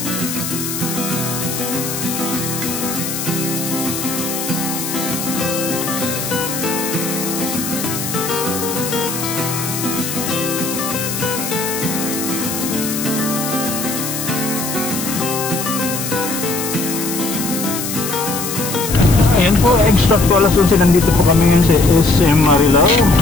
Ayan po, exact po alas 11 nandito po kami ngayon sa SM Marilao.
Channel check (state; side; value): noise; left; hiss, 5 dB below the sound